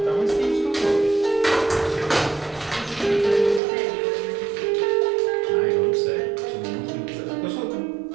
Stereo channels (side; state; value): left; drops out; at 3.6 s